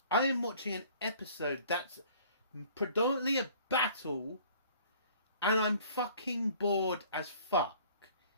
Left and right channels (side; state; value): both; inverted; correlation -0.53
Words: I am watching an episode that's predominantly a battle and I'm fucking bored as fuck?